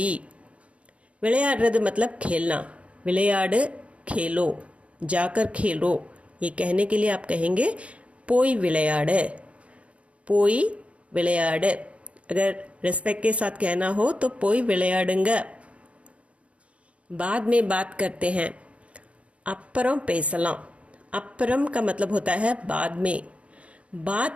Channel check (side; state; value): left; late; 0.063 ms